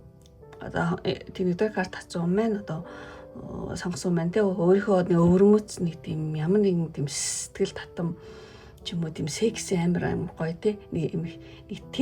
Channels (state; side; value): identical; both; correlation 1.00